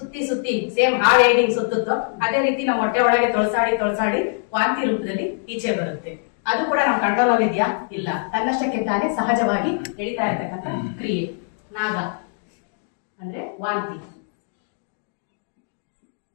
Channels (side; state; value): right; silent; digital silence